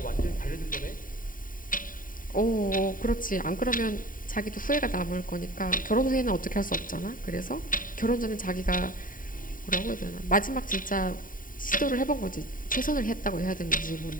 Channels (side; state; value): right; late; 0.40 ms